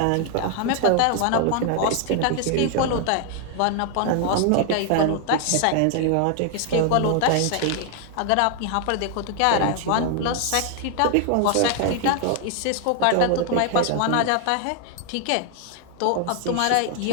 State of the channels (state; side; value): different; both; correlation 0.00